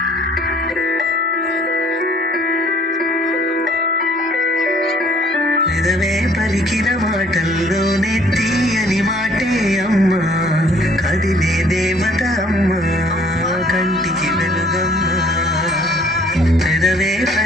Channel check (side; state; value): both; normal; correlation 0.58